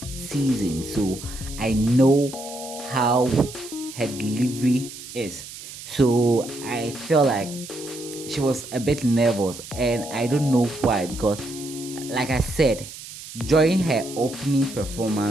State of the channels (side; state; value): right; noise; hiss, 13 dB below the sound